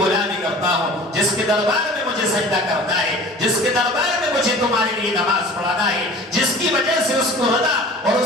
کرتا ہوں جس کے دربار میں مجھے سجدہ کرنا ہے، جس کے دربار میں مجھے تمہارے لیے نماز پڑھانا ہے، جس کی وجہ سے اس کو رضا اور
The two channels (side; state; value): both; normal; correlation 0.43